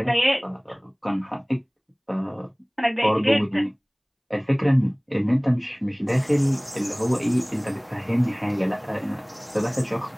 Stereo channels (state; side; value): identical; both; correlation 1.00